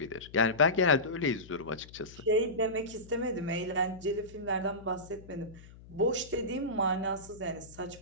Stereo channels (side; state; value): left; noise; hum, 19 dB below the sound